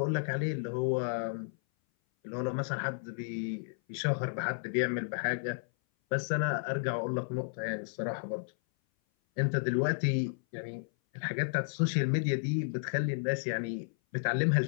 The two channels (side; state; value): right; silent; 56 dB below the other